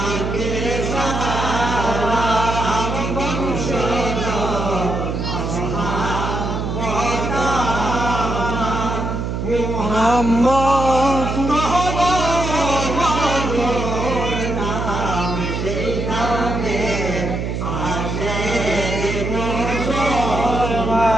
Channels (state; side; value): noise; right; hum, 3 dB below the sound